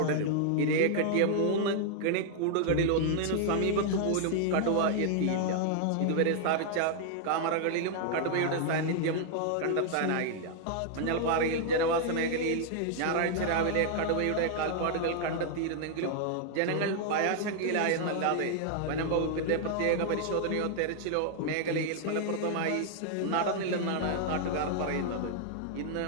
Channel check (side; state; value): both; different; correlation 0.00